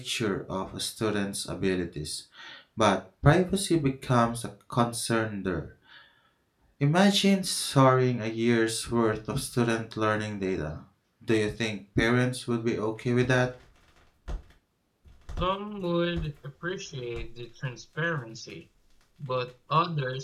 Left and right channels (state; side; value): identical; both; correlation 1.00